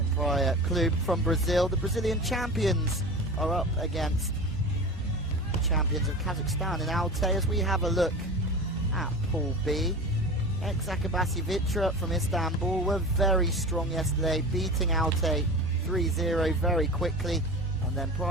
Praia Clube from Brazil. The Brazilian champions are up against the champions of Kazakhstan in Altay as we have a look at Pool B. Ex-Akabasi Vitra from Istanbul were very strong yesterday, beating Altay 3-0 very quickly. And then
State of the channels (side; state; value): both; normal; correlation 0.32